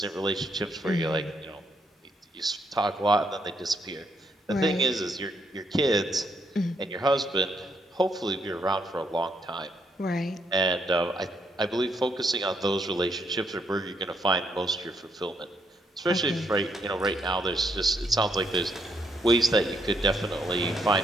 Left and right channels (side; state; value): both; normal; correlation 0.75